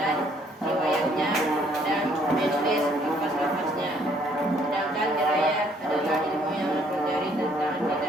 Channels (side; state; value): both; normal; correlation 0.64